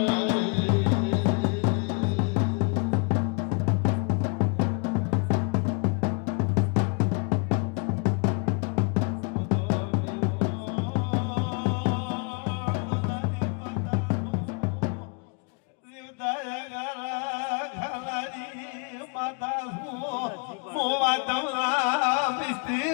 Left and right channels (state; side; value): quieter; right; 35.1 dB